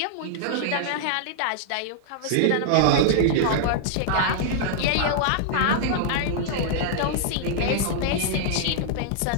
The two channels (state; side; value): different; both; correlation -0.01